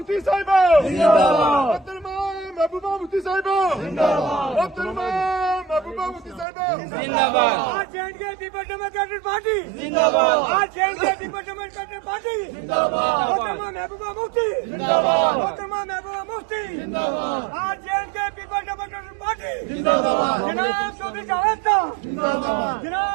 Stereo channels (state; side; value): drops out; left; at 6.5 s